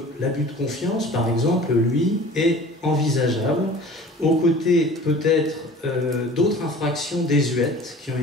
l'abus de confiance, par exemple, lui, est envisageable, aux côtés peut-être d'autres infractions désuètes qui ont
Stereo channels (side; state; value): both; normal; correlation 0.44